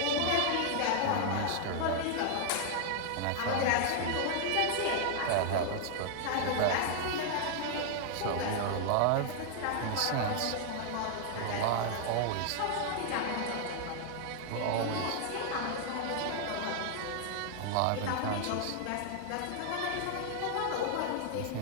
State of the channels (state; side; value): different; both; correlation 0.00